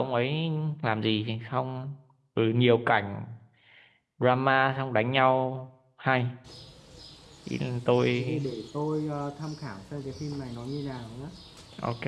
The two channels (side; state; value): both; identical; correlation 1.00